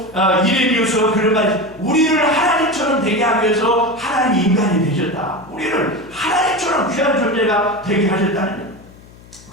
이레미우서 그런 말, 우리를 하나님처럼 되게 하기 위해서 하나님이 인간이 되셨다. 우리를 하나님처럼 귀한 존재가 되게 하셨다는 거예요.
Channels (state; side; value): noise; left; hum, 23 dB below the sound